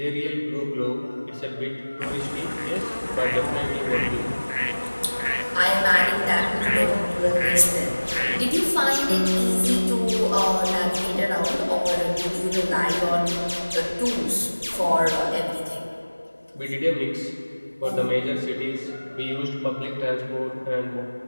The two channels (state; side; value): inverted; both; correlation -1.00